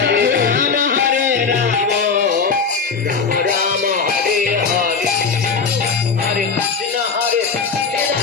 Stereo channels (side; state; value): right; quieter; 5.2 dB